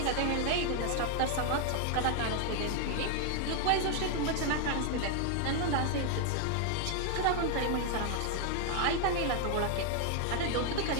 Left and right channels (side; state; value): both; different; correlation 0.00